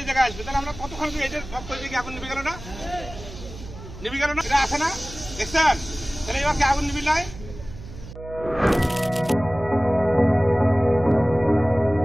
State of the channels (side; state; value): right; noise; hum, 14 dB below the sound